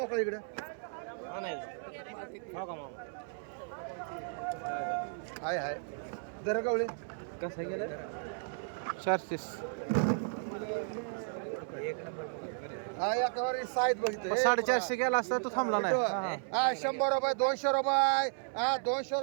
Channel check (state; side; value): silent; left; 55 dB below the other